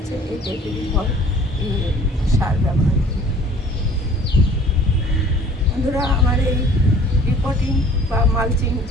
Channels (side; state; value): both; normal; correlation 0.51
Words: এই টাইপেরই ফল সার ব্যবহার করি। বন্ধুরা, আমার এই রিপোর্টিং বা মালচিং